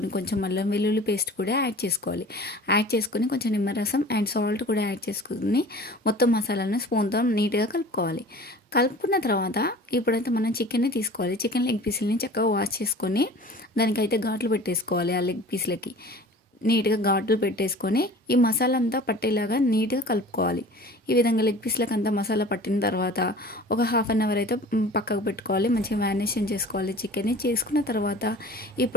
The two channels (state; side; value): normal; both; correlation 0.43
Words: కొంచెం అల్లం వెల్లుల్లి పేస్ట్ కూడా యాడ్ చేసుకోవాలి. యాడ్ చేసుకొని కొంచెం నిమ్మరసం అండ్ సాల్ట్ కూడా యాడ్ చేసుకుని మొత్తం మసాలాను స్పూన్తో నీట్గా కలుపుకోవాలి. కలుపుకున్న తర్వాత ఇప్పుడైతే మనం చికెన్ని తీసుకోవాలి. చికెన్ లెగ్ పీసులని చక్కగా వాష్ చేసుకొని దానికైతే ఘాట్లు పెట్టేసుకోవాలి. ఆ లెగ్ పీస్లకి నీట్గా ఘాట్లు పెట్టేసుకొని ఈ మసాలా అంతా పట్టేలాగా నీట్గా కలుపుకోవాలి. ఈ విధంగా లెగ్ పీస్లకు అంతా మసాలా పట్టిన తర్వాత ఒక హాఫ్ అన్ అవర్ అయితే పక్కకు పెట్టుకోవాలి. మంచిగా మ్యారినేషన్ చేసుకోవాలి చికెన్ని. చేసుకున్న తర్వాత